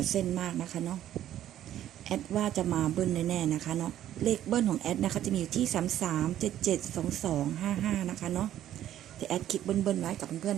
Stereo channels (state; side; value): quieter; left; 11.9 dB